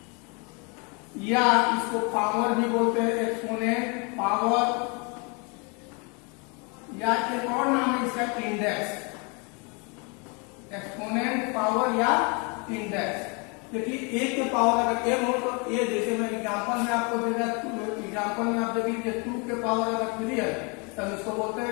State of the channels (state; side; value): quieter; right; 32.7 dB